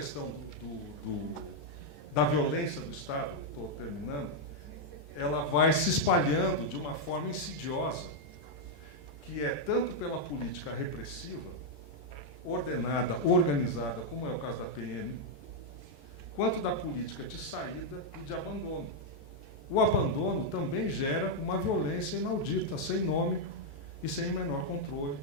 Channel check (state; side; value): late; right; 14 ms